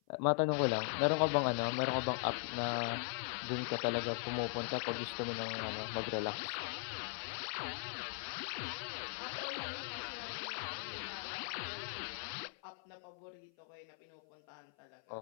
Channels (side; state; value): right; silent; 51 dB below the other